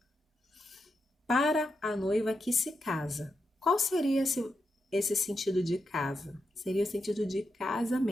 Para a noiva que se casa. Qual seria esse sentido de casa? Seria o sentido de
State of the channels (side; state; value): both; normal; correlation 0.86